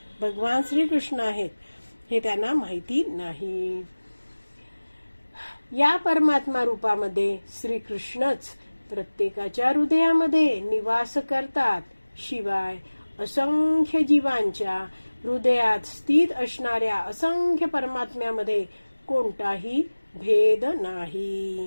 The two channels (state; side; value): inverted; both; correlation -1.00